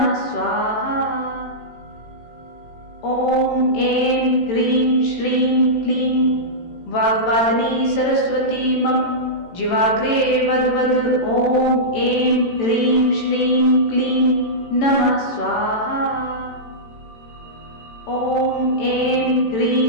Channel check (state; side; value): late; right; 18 ms